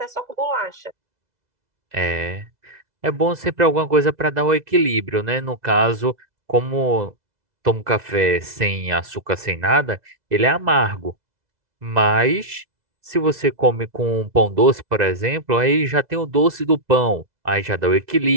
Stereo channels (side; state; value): left; late; 2.0 ms